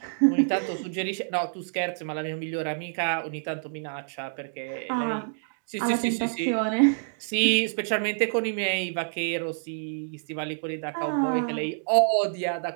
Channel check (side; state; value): left; silent; digital silence